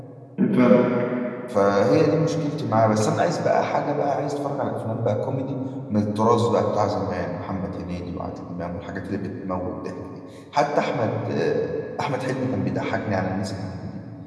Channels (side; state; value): both; identical; correlation 1.00